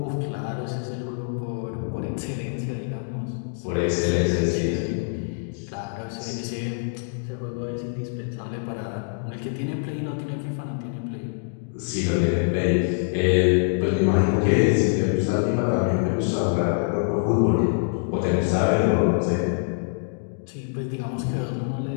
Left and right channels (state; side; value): silent; right; digital silence